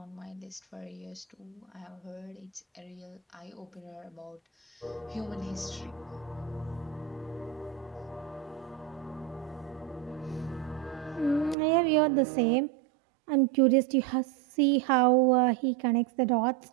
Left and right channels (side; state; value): left; drops out; at 11.6 s